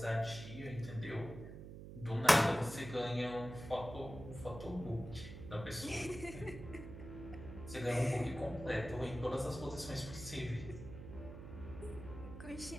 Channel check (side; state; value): right; noise; hum, 11 dB below the sound